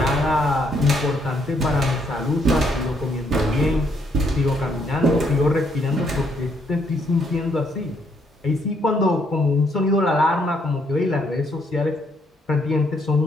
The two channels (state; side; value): normal; both; correlation 0.71